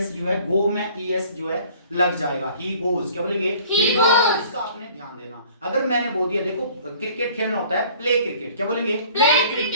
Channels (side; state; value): both; inverted; correlation -0.52